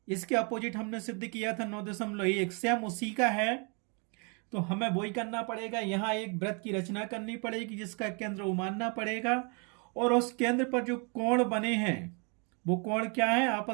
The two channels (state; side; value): quieter; left; 34.7 dB